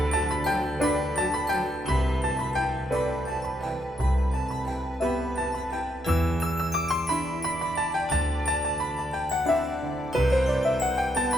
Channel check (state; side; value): normal; both; correlation 0.77